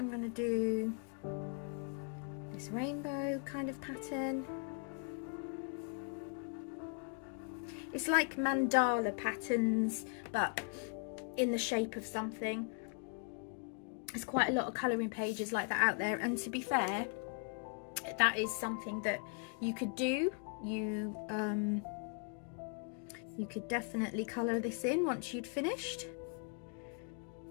going to do this rainbow kind of pattern. It's like mandala patterns, but in the shape of something. There's quite a lot of colouring pages like that out there, and to be fair, that is something that you could do. You could definitely colour this in once you'd finished.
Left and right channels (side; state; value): right; quieter; 37.8 dB